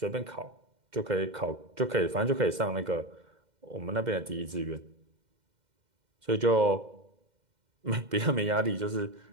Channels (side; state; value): left; late; 2.1 ms